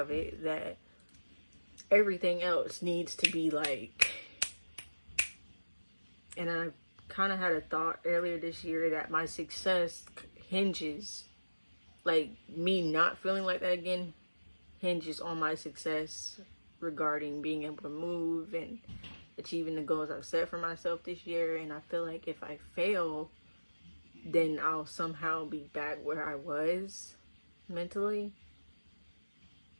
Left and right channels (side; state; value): both; inverted; correlation -1.00